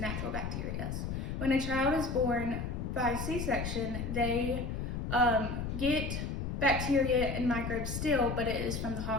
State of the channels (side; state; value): left; noise; rumble, 3 dB below the sound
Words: bacteria. When a child is born by C-section, they get bacteria and microbes still, but it is from the